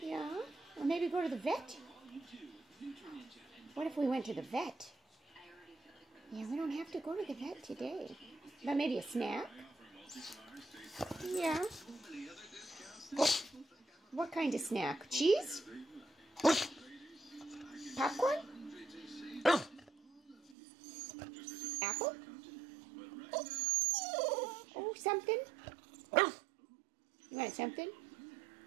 Or maybe go to the vet? What if we went to the vet? Yeah, we don't have to go to the vet today. But maybe a snack? Yeah. What kind of snack? Cheese? Popcorn? Apple? Oh, something? You want something?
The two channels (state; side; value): drops out; left; at 20.6 s